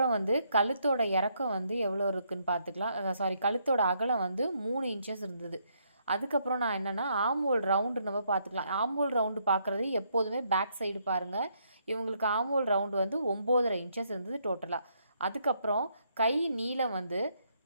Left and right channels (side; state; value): both; inverted; correlation -0.73